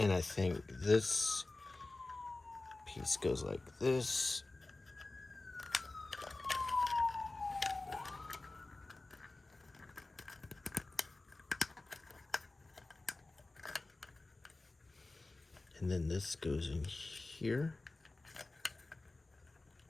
I think this piece goes like this. And then this goes in here.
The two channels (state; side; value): quieter; right; 3.1 dB